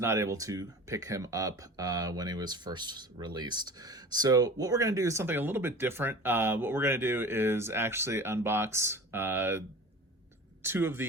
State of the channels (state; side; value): normal; both; correlation 0.38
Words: able to pick him up when he was first released. So what we're going to do is something a little bit different. What we're going to do is actually unbox two of